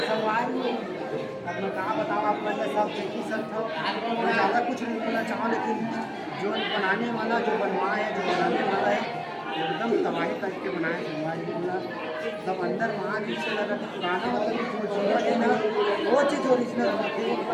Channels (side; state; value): both; identical; correlation 1.00